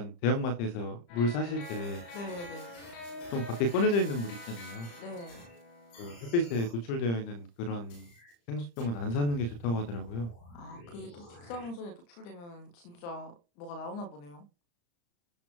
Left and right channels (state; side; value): late; right; 35 ms